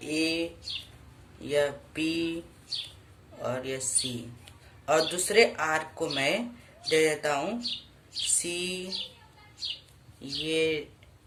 ए, यह बी और यह सी, और दूसरे आर्क को मैं दे देता हूँ सी, ये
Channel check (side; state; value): both; identical; correlation 1.00